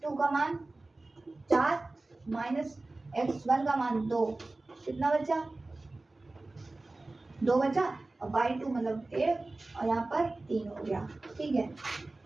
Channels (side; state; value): left; quieter; 3.1 dB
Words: का मान 4 - x1 का मान 2, कितना बचा? 2 बचा और y2 मतलब 1 और यहाँ पर 3 हो गया, ठीक है।